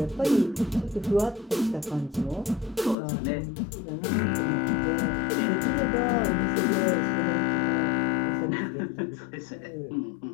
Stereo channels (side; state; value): right; drops out; at 3.0 s